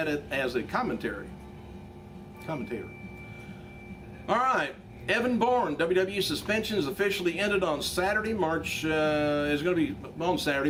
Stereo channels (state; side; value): identical; both; correlation 1.00